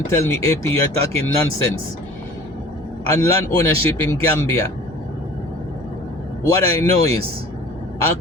tell me, AP, you're talking nonsense. And land ownership in Gambia, what I know is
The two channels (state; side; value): normal; both; correlation 0.45